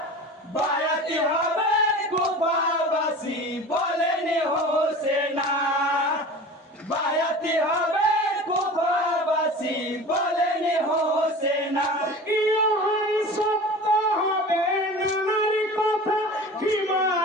বায়াতি হবে কুফাবাসী বলেনি হোসেনা, বায়াতি হবে কুফাবাসী বলেনি হোসেনা। ইহাই সত্য হবে নানার কথা ক্ষমা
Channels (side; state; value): both; normal; correlation 0.37